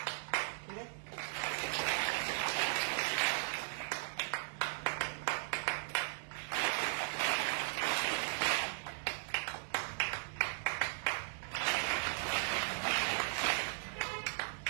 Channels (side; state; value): left; silent; digital silence